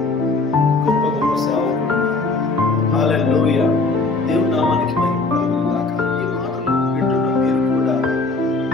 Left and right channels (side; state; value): right; quieter; 3.6 dB